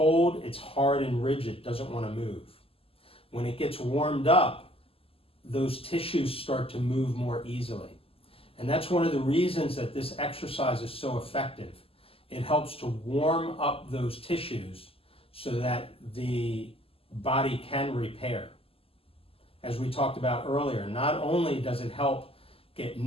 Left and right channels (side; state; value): right; late; 0.27 ms